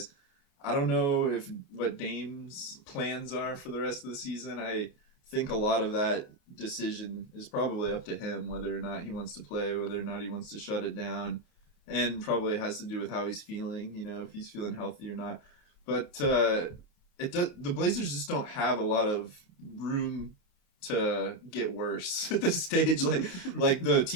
I don't know what Dame's plans are for the rest of the season. I think a lot of that decision is probably up to him, whether or not he wants to play, whether or not he wants to shut it down, and probably has to do with how he's feeling, if he's feeling healthy or not. But the Blazers just don't have a lot of room to get worse at this stage. Like the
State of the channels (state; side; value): late; right; 28 ms